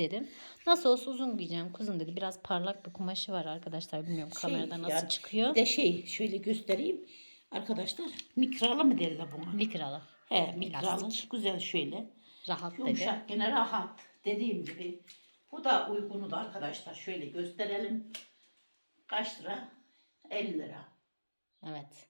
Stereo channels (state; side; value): inverted; both; correlation -1.00